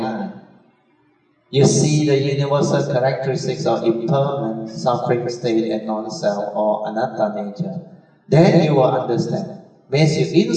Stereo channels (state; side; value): identical; both; correlation 1.00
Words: You see the universal characteristics of impermanent, suffering state and non-self or anatta nature. Then you will understand. Once you